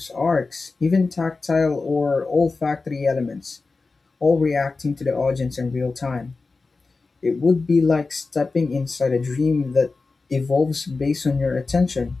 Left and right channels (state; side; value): quieter; right; 3.9 dB